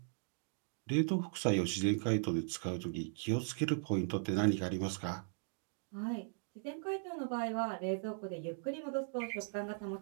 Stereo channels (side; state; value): left; silent; digital silence